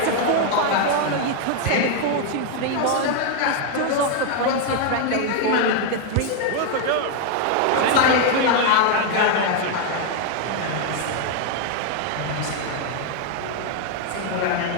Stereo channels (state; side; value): different; both; correlation 0.00